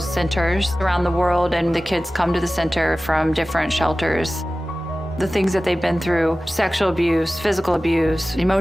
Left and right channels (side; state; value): both; normal; correlation 0.96